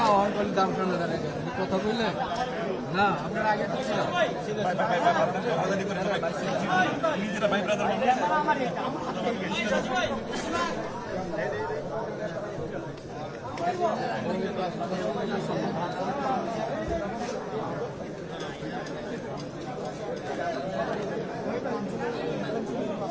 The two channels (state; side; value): identical; both; correlation 1.00